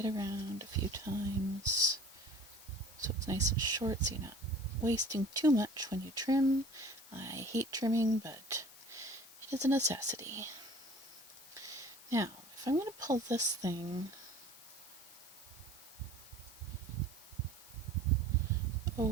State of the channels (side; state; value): left; noise; hiss, 20 dB below the sound